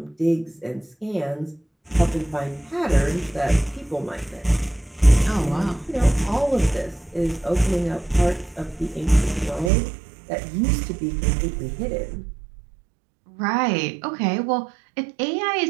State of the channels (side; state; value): left; drops out; at 9.7 s